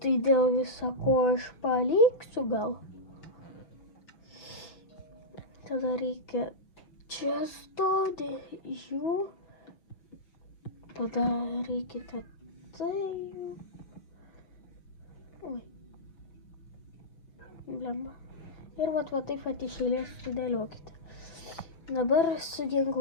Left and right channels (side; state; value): right; late; 6.4 ms